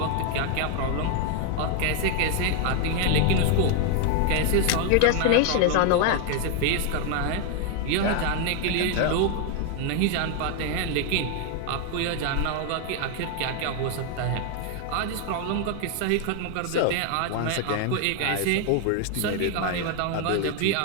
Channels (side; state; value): both; different; correlation 0.00